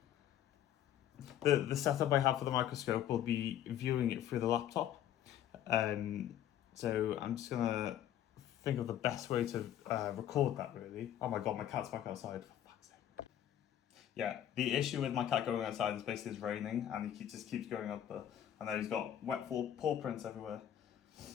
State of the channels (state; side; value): quieter; right; 11.0 dB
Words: The setup I have for the microscope will be viewing it through the laptop. So I'm just gonna think of the best way to record that, really. Oh my god, my cat's back outside, for fuck's sake. Yeah, the issue with my cat going outside is basically it's raining and he just keeps going up there. And then he's got wet paw prints everywhere.